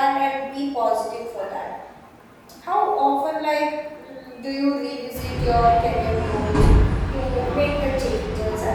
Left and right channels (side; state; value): both; identical; correlation 1.00